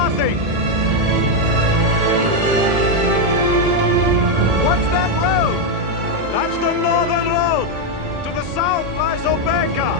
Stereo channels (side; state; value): left; late; 1.8 ms